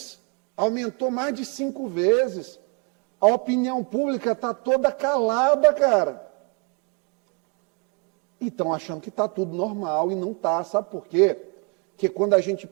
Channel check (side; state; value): left; quieter; 33.1 dB